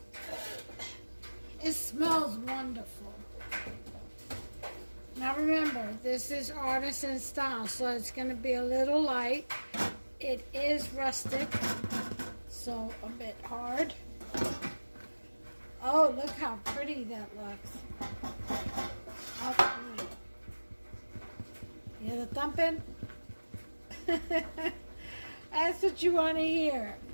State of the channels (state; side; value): inverted; both; correlation -1.00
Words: It smells wonderful. Now remember, this is artisan style, so it's going to be a little light. It is rustic, so a bit hard. Oh, look how pretty that looks. Oh, you hear the thumping? That's what you want to hear.